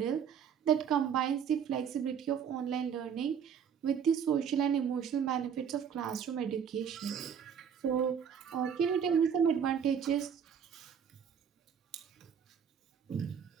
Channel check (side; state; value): left; quieter; 7.6 dB